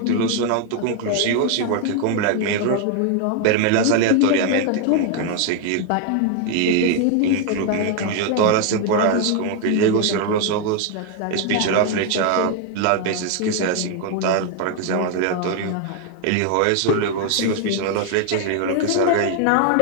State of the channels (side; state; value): both; different; correlation 0.00